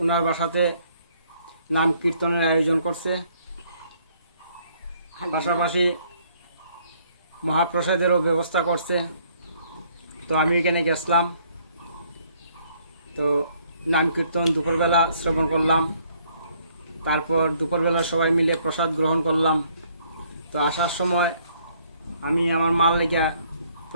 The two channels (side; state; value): both; inverted; correlation -0.65